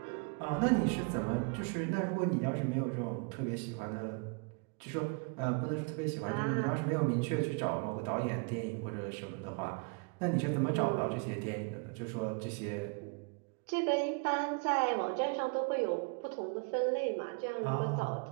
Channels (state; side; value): quieter; left; 35.9 dB